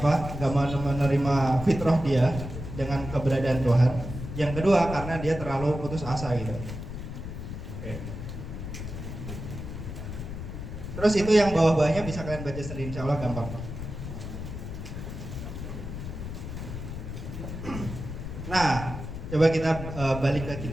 nggak mau menerima fitrah dia dengan keberadaan Tuhan. Yang kedua karena dia terlalu putus asa gitu. Oke. Terus itu yang bawah-bawahnya bisa kalian baca sendiri, insya Allah gampang. Nah, coba kita balik ke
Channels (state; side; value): noise; left; rumble, 8 dB below the sound